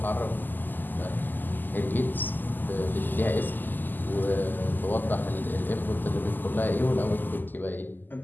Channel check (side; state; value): right; late; 0.088 ms